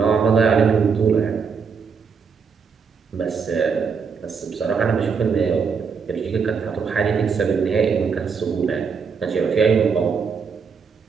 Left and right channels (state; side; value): quieter; left; 5.9 dB